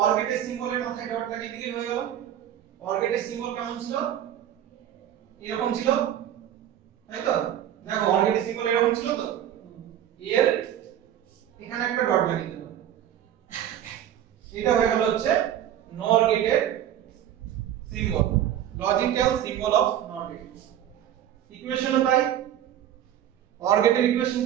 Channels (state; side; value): quieter; left; 10.9 dB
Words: গেটের সিম্বলের মাথায় ডট লাগিয়ে দিলেই হয়ে গেল। OR গেটের সিম্বল কেমন ছিল? এরকম ছিল, তাই তো? দেখো OR গেটের সিম্বল এরকম ছিল তো, এর এখানে একটা ডট লাগিয়ে দিলাম, এটা হয়ে গেল হচ্ছে NOR গেটের symbol, logical symbol of NOR gate. ইকুয়েশনও তাই, OR গেটের ইকুয়েশন